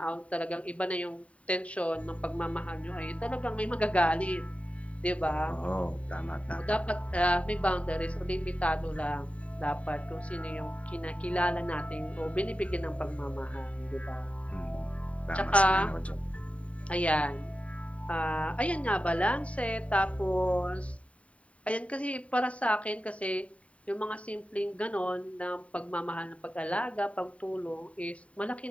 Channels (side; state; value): right; late; 0.065 ms